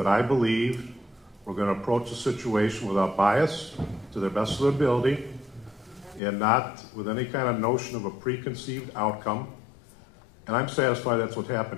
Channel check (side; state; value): right; drops out; at 6.2 s